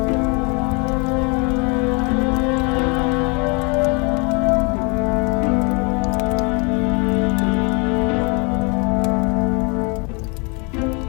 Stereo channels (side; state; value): right; quieter; 32.3 dB